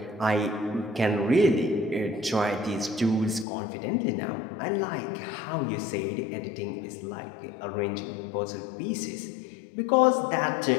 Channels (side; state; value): right; drops out; at 3.5 s